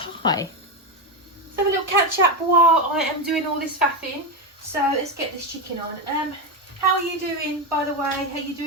Let's have a little catch up while I am doing all this faffing. So let's get this chicken on. How are you doing, by the way? Are you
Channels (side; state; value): both; normal; correlation 0.11